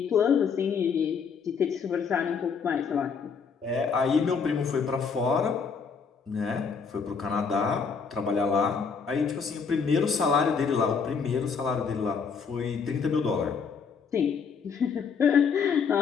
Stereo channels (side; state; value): right; quieter; 5.8 dB